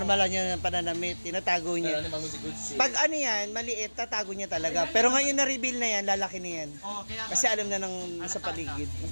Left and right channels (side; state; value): both; inverted; correlation -1.00